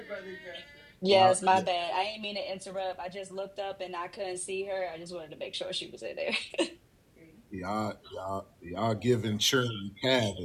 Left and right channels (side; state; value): both; identical; correlation 1.00